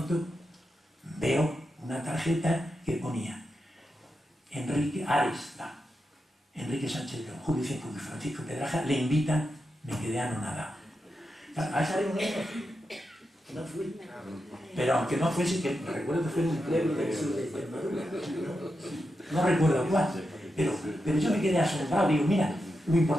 veo una tarjeta que ponía Enrique Ares, Enrique Sánchez León, Julio Cienfuegos y Francisco Pedraja le invitan. Me quedé anonadado. A esa reunión no fui, pero aunque no fuese, que recuerdo que fue en un pleno del sur de Extremadura, no recuerdo cuál, pero yo me quedé asombrado. Digo: mira lo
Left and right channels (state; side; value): normal; both; correlation 0.87